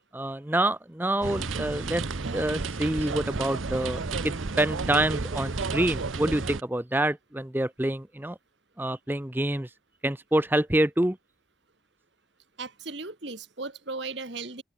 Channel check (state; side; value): normal; both; correlation 0.74